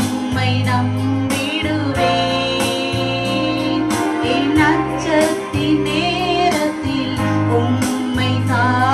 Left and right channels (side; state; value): both; identical; correlation 1.00